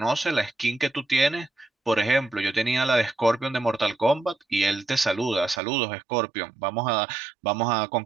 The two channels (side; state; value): left; drops out; at 5.6 s